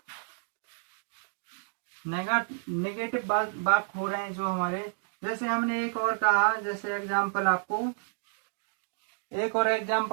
नेगेटिव बात हो रहे हैं जो हमारे, जैसे हमने एक और कहा, जैसे एग्जांपल आपको एक और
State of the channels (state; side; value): silent; left; digital silence